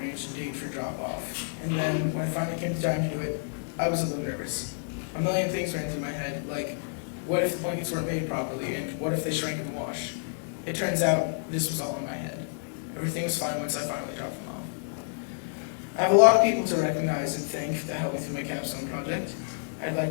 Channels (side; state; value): right; silent; digital silence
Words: a date for drop-off. And then, when it finally came time to do it, I was a little nervous. A million things ran through my head, like, what if the blankets weren't made properly, and what if they shrank in the wash? It turns out, this was all in my head. Everything was fine once I finally dropped them off. I have a lot of people to recognize and thank that helped me through my capstone project. I'd